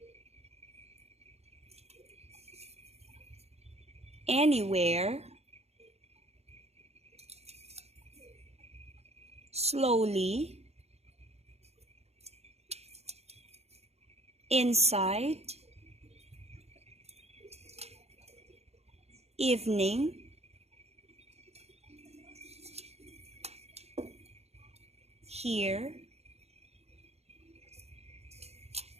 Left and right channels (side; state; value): left; late; 0.31 ms